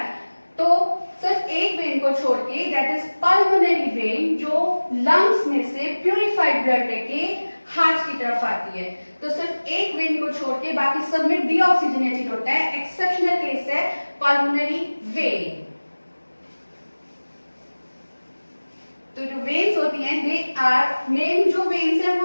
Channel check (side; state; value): both; inverted; correlation -1.00